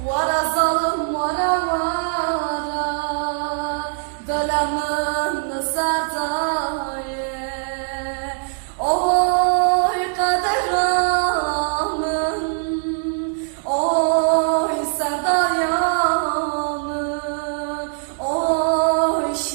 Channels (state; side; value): silent; left; 65 dB below the other